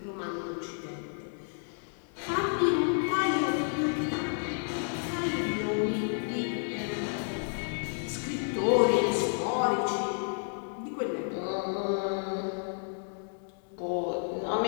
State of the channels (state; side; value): silent; right; 57 dB below the other